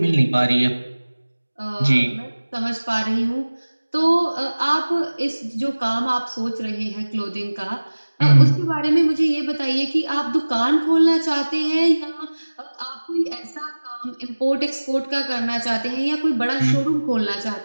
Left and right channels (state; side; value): inverted; both; correlation -1.00